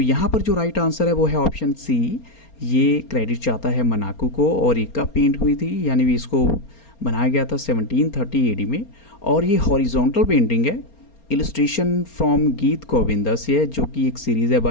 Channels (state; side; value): late; right; 4.3 ms